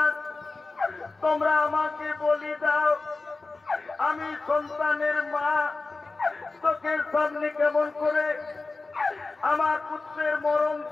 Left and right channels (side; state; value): right; quieter; 3.6 dB